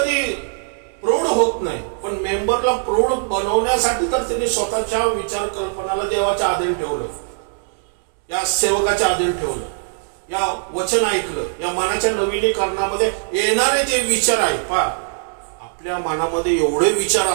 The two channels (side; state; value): left; silent; 66 dB below the other